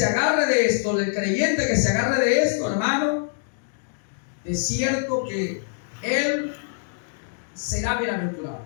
agarre de esto, el creyente que se agarre de esto, hermano, es cierto que él será bienaventurado.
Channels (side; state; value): right; silent; digital silence